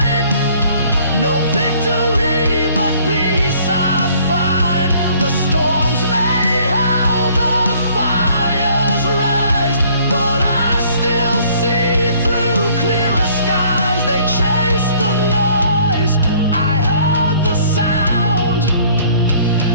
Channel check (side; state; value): both; inverted; correlation -0.58